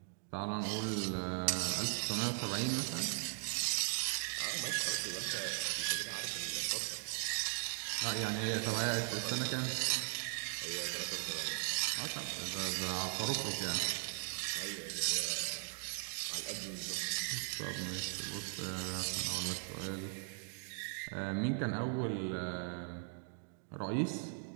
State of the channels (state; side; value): silent; left; 52 dB below the other